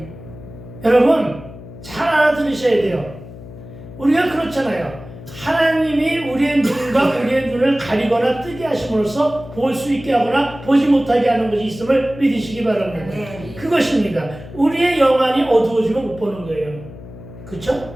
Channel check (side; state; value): left; noise; hum, 15 dB below the sound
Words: 여러분, 잘 알아들으셔야 돼요. 우리가 그렇잖아요. 하나님이 우리의 눈과 우리의 눈을 가리거나 뜨게 하심으로써 볼 수 있게 하거나 보지 못하게 하는 것이 있음을 믿으시기 바랍니다. 네. 그것입니다. 우리의 영안이 어두워지면 못 보는 거예요.